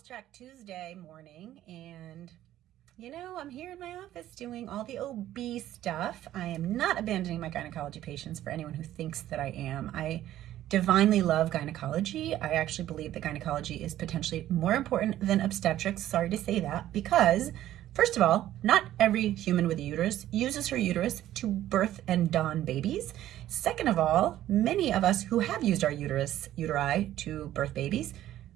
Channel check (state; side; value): quieter; left; 13.1 dB